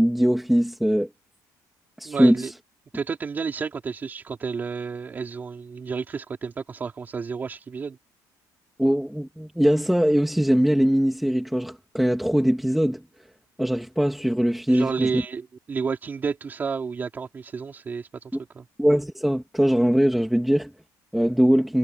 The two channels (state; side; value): normal; both; correlation 0.98